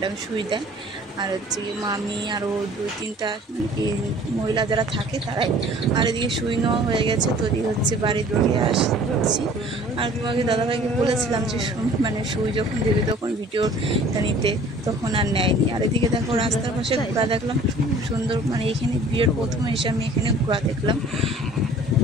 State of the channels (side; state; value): both; normal; correlation 0.50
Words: সুই দেয়। আর হচ্ছে মামি আরও 2-3টা মহিলা যারা থাকে তারাই। আর এদিকে সুই নেওয়া হয়ে গেছে। তো এদিকে হচ্ছে বাড়ির দিকে আসছি। আর তোমাকে দাদাভাইকে বলেছিলাম যে সুই যখন দেবে তখন ভিডিওটা নিতে, তখন আর নেয়নি। আর এদিকে দেখো রাস্তার পাশে ঘোড়া দেখলাম সুন্দর, এখানে বিয়ের প্রথমে এসে আমি এখানে ঘোড়া দেখলাম,